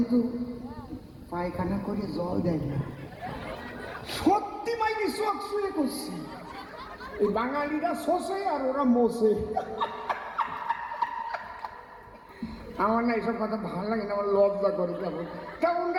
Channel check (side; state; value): both; identical; correlation 1.00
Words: পায়খানা করে জল দেয় না, সত্যি মাইনি চোখ শুয়ে করছি। এই বাঙালিরা শোষে আর ওরা মোষে। আমার না এইসব কথা ভালো লাগে না, আমার লজ্জা করে। কেমন